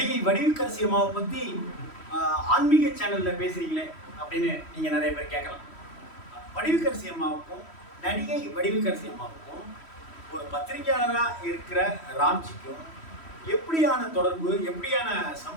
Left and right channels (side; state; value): right; late; 3.1 ms